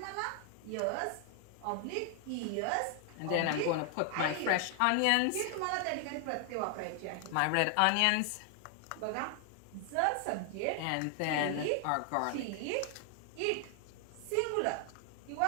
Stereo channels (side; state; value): both; different; correlation 0.00